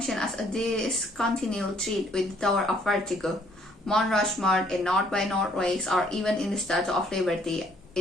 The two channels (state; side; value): normal; both; correlation 0.64